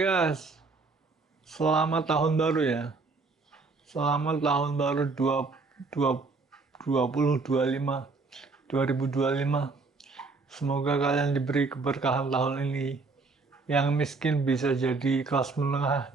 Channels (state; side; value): quieter; left; 4.0 dB